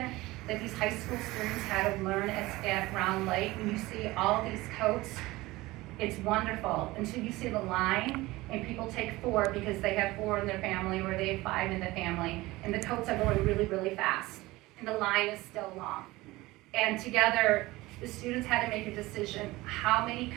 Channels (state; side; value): quieter; left; 19.7 dB